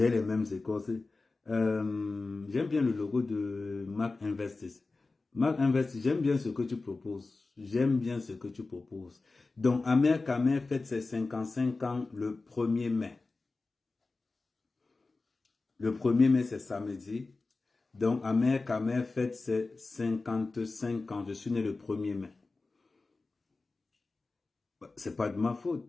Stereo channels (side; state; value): right; quieter; 3.6 dB